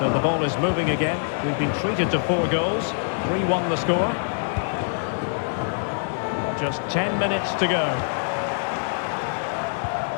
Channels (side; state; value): right; silent; digital silence